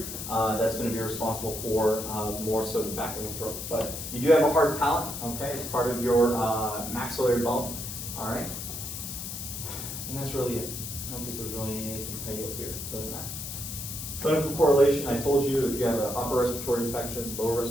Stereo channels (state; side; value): noise; left; hiss, 7 dB below the sound